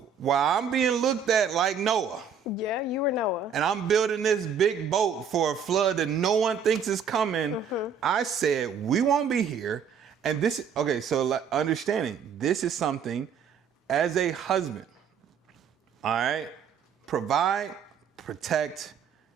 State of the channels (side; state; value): left; quieter; 6.7 dB